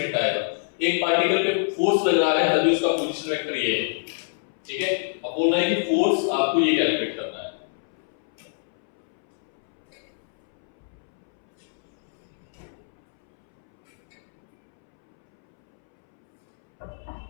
आएगा। एक पार्टिकल पे फोर्स लग रहा है तभी उसका पोजीशन वेक्टर ये है, ठीक है। अब बोलना है कि फोर्स आपको ये कैलकुलेट करना है।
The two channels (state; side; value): silent; right; 62 dB below the other